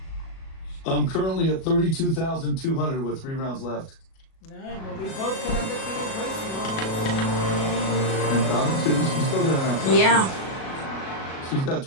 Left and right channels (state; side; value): late; right; 37 ms